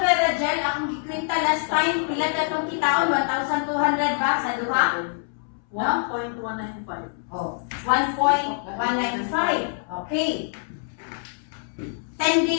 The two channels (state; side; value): silent; right; 62 dB below the other